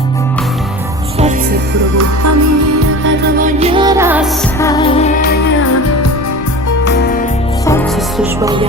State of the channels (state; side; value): normal; both; correlation 0.34